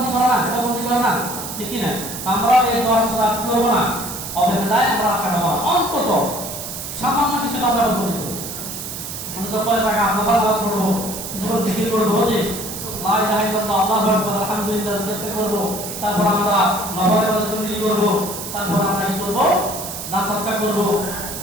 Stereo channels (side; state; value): right; noise; hiss, 8 dB below the sound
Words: করে না, এটা বন্দি করে না, ঠিক কি না? আমরা এই 10 রাত করবো না, অবহেলায় আমরা কাটাবো, অন্তত সামান্য কিছু আমরা বন্দি করবো, অন্তত 5 টাকা আমরা নামাজ পড়বো, যখন জিকির করবো যে লা ইলাহা ইল্লাল্লাহ আল্লাহু আকবার আলহামদুলিল্লাহ চেষ্টা করব, তারপর আমরা নবরে বদলি করব, তারপর আমরা কি করব, দান সৎকার করব,